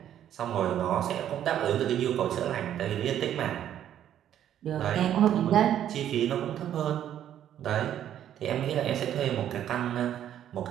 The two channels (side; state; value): left; quieter; 10.7 dB